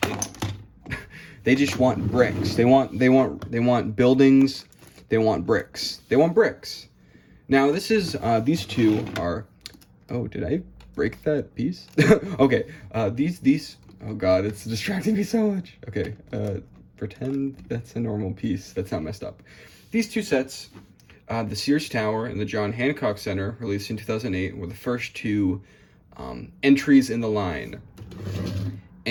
They just want bricks. They want buildings. They want bricks. They want bricks. Now these two are. Oh, did I break that piece? Okay. These. Oh God, it's distracting me so much. Okay. Pretend that's a normal piece. That's not messed up. These two sets, the Sears Tower and the John Hancock Center, released in 2008, were the first two entries in the line.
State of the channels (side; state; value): both; identical; correlation 1.00